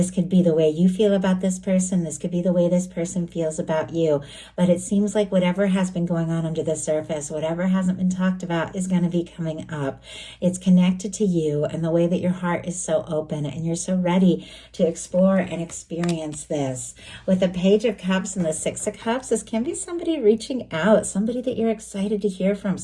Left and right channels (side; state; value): both; identical; correlation 1.00